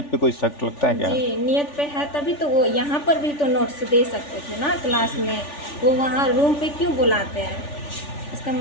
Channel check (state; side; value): late; right; 3.4 ms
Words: पे कोई शक लगता है क्या? जी, नियत पे है तभी तो वो यहाँ पर भी तो नोट्स दे सकते थे ना क्लास में। वो वहाँ रूम पे क्यों बुलाते हैं? इसका